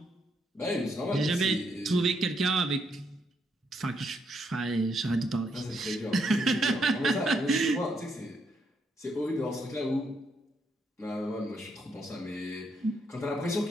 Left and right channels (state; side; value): normal; both; correlation 0.76